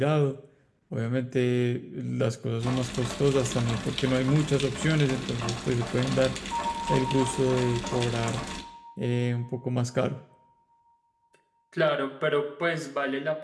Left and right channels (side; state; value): both; identical; correlation 1.00